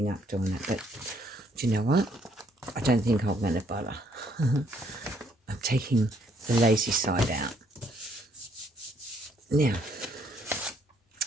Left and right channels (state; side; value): normal; both; correlation 0.68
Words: up doing it, but do you know what? I don't think I'm going to bother. I'm taking the lazy side out. Now,